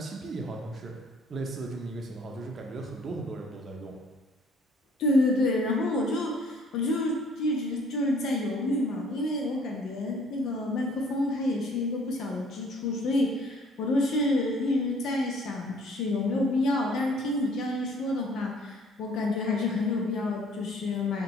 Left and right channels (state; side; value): normal; both; correlation 0.57